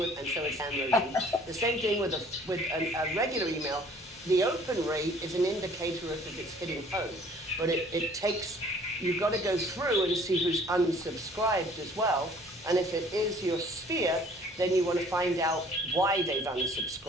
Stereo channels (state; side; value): normal; both; correlation 0.55